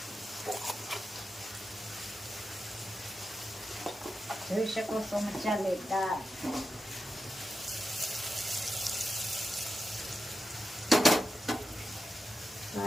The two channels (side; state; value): both; normal; correlation 0.90